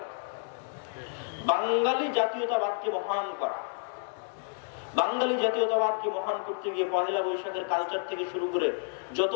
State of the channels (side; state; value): right; silent; 58 dB below the other